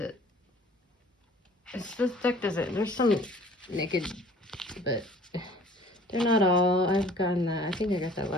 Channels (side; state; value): both; normal; correlation 0.51